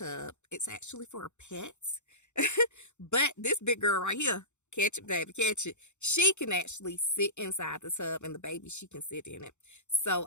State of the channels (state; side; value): late; right; 0.83 ms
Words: It's actually for pets. But this big girl right here, catch it, baby, catch it. She can actually sit inside the tub, and the baby, she can sit in it. So